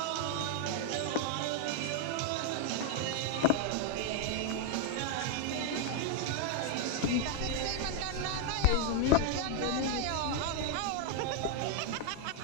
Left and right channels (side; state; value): both; different; correlation 0.00